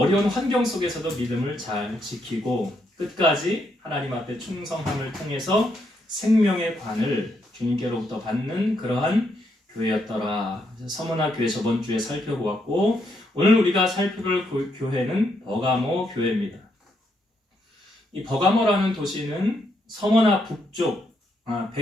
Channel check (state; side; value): normal; both; correlation 0.77